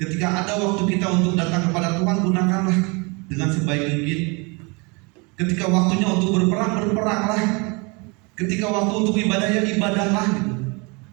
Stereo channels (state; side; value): quieter; left; 29.6 dB